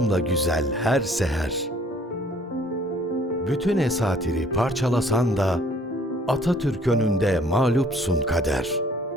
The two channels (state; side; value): normal; both; correlation 0.58